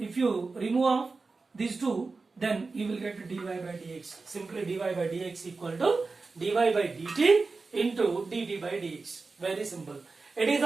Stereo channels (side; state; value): left; quieter; 4.0 dB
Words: you remove these two, then you will get dy by dx. Simply dy by dx equal to dy by dt into dt by dx. Very simple. It is